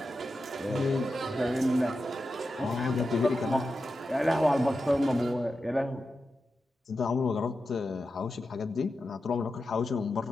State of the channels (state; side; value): normal; both; correlation 0.90